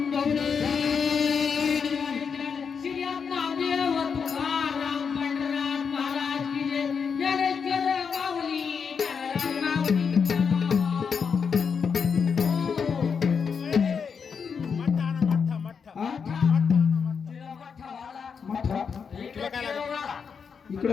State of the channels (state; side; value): quieter; right; 6.2 dB